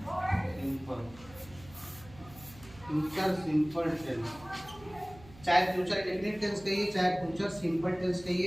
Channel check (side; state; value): right; noise; hum, 20 dB below the sound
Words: Future simple tense, चाहे फ्यूचर इंडेफिनिट टेंस कहिए, चाहे फ्यूचर सिंपल टेंस